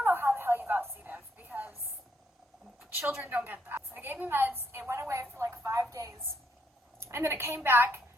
know how the hell you got C. diff because children don't get that." So they gave me meds. It went away for like 5 days, and then it came back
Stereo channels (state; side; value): normal; both; correlation 0.73